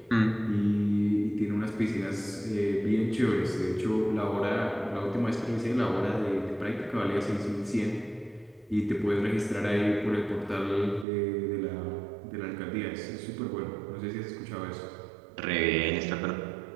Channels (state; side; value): drops out; left; at 11.1 s